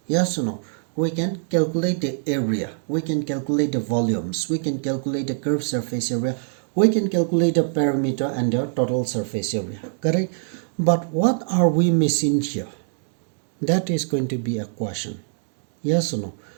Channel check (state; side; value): silent; left; digital silence